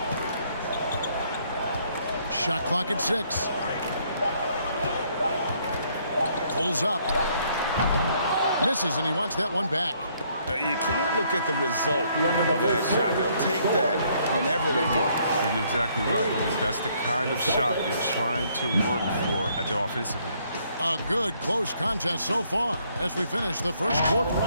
Shot clock at 6. Pulls up. Misses, and he wants that one back. You can't look at the result of that shot. They'll take that whenever they get it. You're exactly right. I mean, that's the kind of shot you're trying to work for at the offensive end. A good close contest so far as we finish the first quarter.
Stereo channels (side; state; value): both; inverted; correlation -0.67